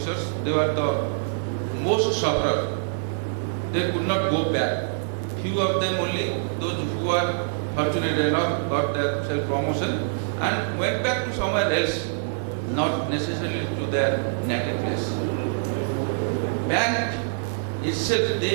they were the most sufferer. They could not go back. Few of them only, those who are fortunate enough got their self-promotion and went back to somewhere else, not necessarily to their native place. Bank itself,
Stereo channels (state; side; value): silent; left; digital silence